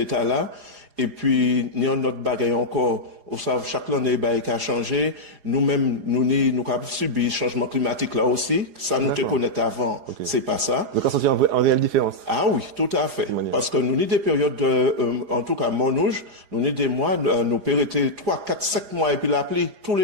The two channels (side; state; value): left; late; 4.9 ms